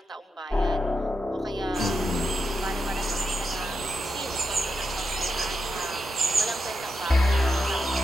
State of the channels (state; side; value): normal; both; correlation 0.86